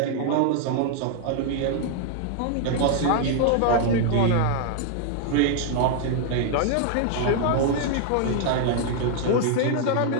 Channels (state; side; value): different; both; correlation 0.00